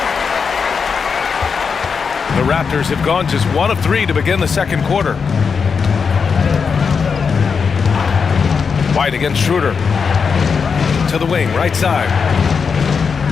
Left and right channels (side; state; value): right; quieter; 5.7 dB